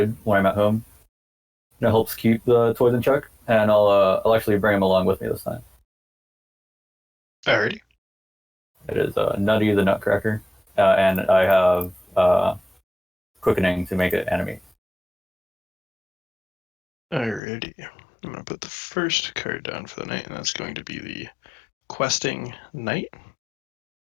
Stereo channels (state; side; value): drops out; right; at 17.4 s